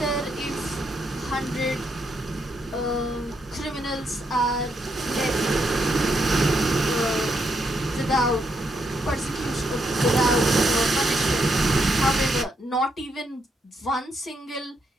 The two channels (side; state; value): both; normal; correlation 0.78